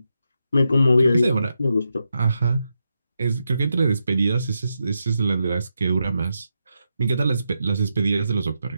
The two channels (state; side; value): inverted; both; correlation -0.85